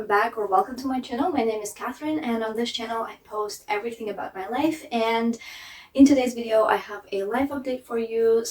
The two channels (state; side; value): identical; both; correlation 1.00